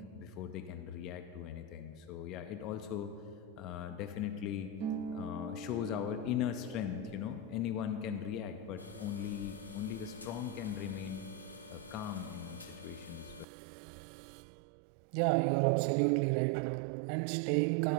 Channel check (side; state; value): left; drops out; at 13.5 s